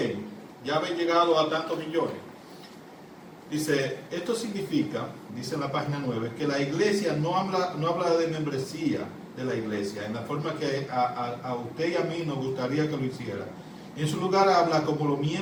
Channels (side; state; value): both; identical; correlation 1.00